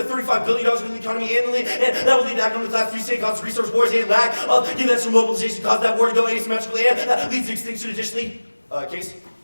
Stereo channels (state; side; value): inverted; both; correlation -1.00